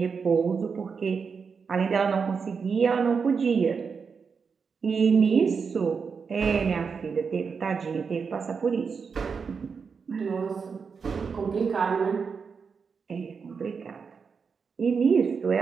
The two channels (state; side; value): quieter; left; 5.7 dB